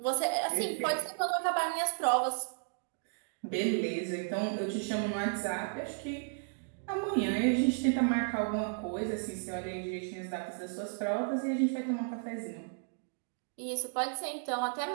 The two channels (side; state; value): left; silent; digital silence